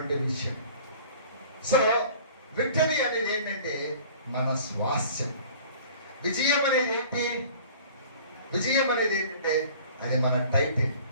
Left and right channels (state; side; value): inverted; both; correlation -0.47